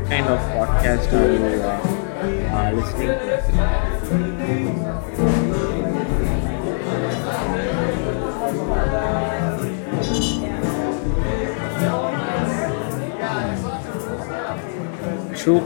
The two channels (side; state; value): right; silent; digital silence